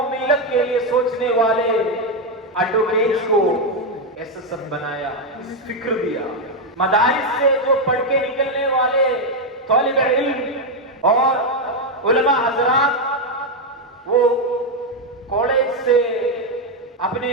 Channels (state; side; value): normal; both; correlation 0.04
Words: ملت کے لیے سوچنے والے ایڈوکیٹس کو ایس ایس ایف بنایا، اس فکر دیا. مدارس سے جو پڑھ کے نکلنے والے طالب علم اور علماء حضرات وہ کالج سے اپنے